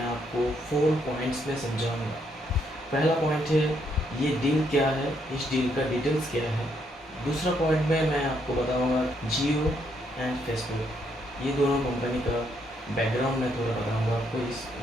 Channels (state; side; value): normal; both; correlation 0.74